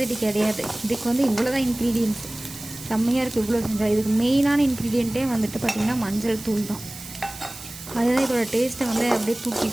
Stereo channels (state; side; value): noise; right; hiss, 14 dB below the sound